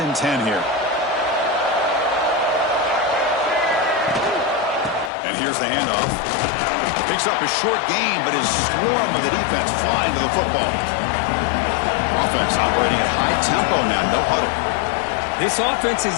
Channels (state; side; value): drops out; right; at 5.1 s